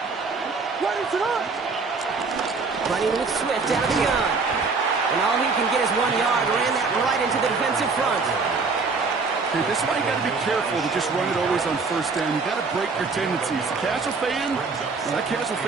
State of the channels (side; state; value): left; quieter; 4.4 dB